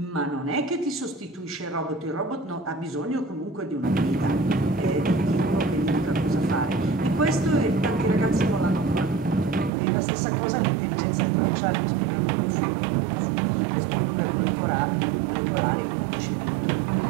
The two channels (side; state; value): left; drops out; at 9.7 s